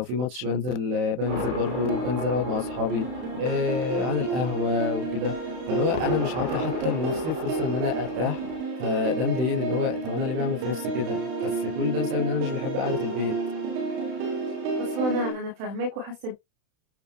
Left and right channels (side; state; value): left; late; 31 ms